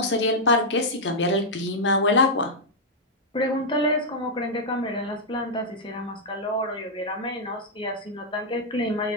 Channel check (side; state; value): both; normal; correlation -0.05